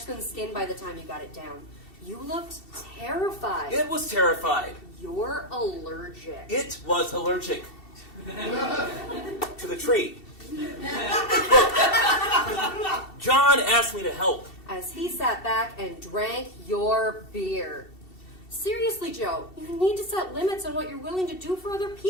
than skin by the time you got it down. You looked terrified. It was terrified. You're allergic. It was allergic. To the tree. John asked me to help. As he sat back and drank your beer. Seriously, Joe, you need to set limits on what you're willing to do for other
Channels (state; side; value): late; right; 2.7 ms